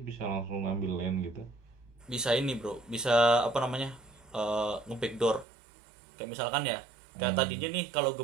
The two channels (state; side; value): drops out; left; at 5.5 s